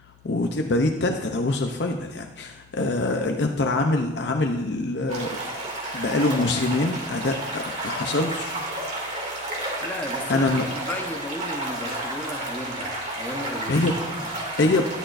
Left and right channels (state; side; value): noise; left; hum, 28 dB below the sound